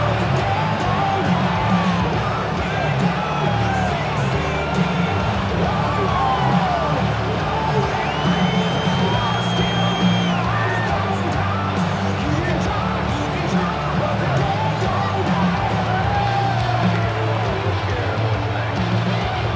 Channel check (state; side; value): identical; both; correlation 1.00